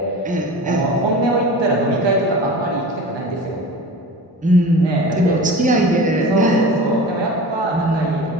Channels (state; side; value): normal; both; correlation 0.34